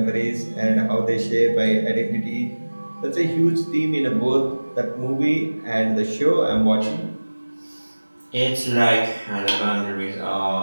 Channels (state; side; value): inverted; both; correlation -1.00